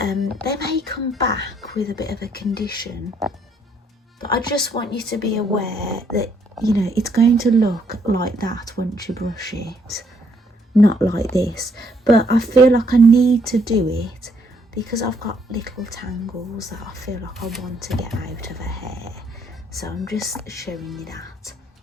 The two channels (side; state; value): both; normal; correlation 0.69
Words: may come back with a bit of a condition. But I just want you to be aware that, you know, it's going to look like that once you brush it. Not like this. But I feel like I need to do it because I've got little tangles that I feel like I want to get out of her hair. So I'm just showing you that